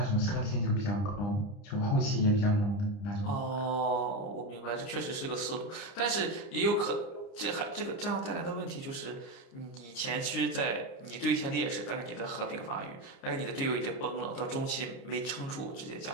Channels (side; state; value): right; late; 30 ms